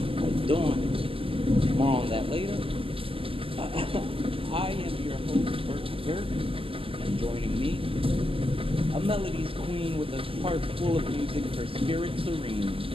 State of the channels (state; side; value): late; left; 0.26 ms